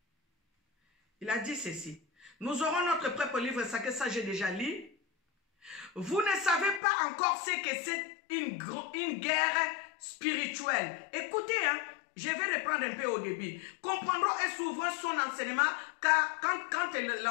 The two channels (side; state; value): right; drops out; at 6.8 s